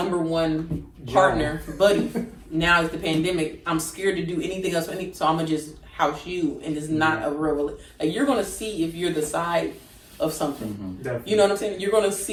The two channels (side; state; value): both; identical; correlation 1.00